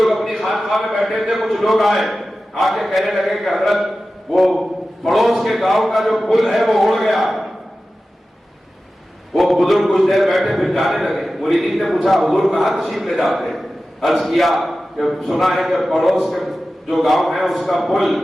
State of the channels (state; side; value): normal; both; correlation 0.94